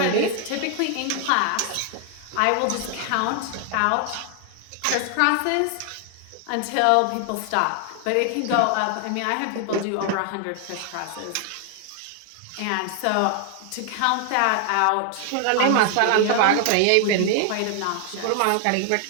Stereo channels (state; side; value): different; both; correlation 0.00